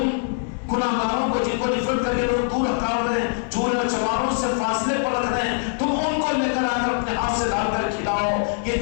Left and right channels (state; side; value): silent; right; 63 dB below the other